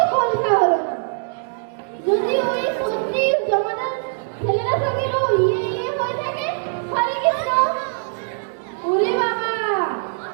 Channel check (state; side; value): silent; left; digital silence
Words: বলতে হলো না। যদি ওই সত্যি জমাদার ছেলেরা সঙ্গে ইয়ে হয়ে থাকে। হরে কৃষ্ণ। ওরে বাবা,